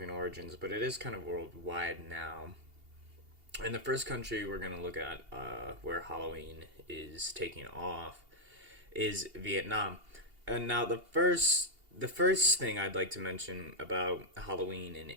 origins, but it is kind of worldwide now. And the first country we're going to look at where Halloween is taking off is Vietnam. And now the first thing I'd like to mention about Halloween in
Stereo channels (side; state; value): left; late; 2.8 ms